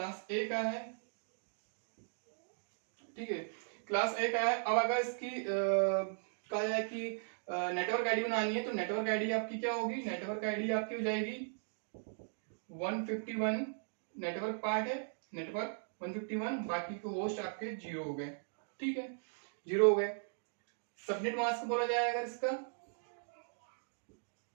ए का है, ठीक है, क्लास ए का है। अब अगर इसकी कहा जाए कि नेटवर्क आईडी बनानी है, तो नेटवर्क आईडी आपकी क्या होगी, नेटवर्क आईडी आपकी हो जाएगी 151, नेटवर्क पार्ट है, नेटवर्क 151, बाकी के होस्ट आपके 0 हो गए, ठीक है, 0 हो गए। सबनेट मास्क बोला जाए अगर इसका,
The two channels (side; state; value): left; silent; digital silence